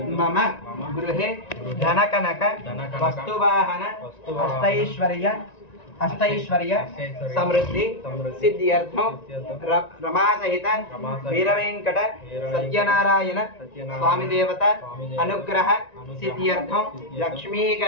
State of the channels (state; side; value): late; right; 1.9 ms